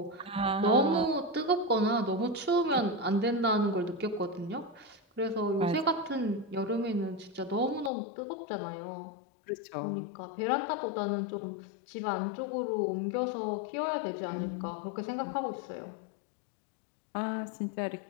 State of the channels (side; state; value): right; drops out; at 7.9 s